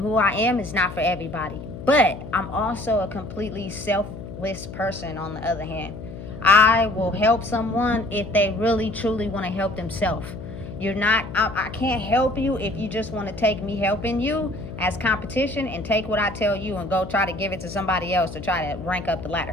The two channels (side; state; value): left; noise; hum, 11 dB below the sound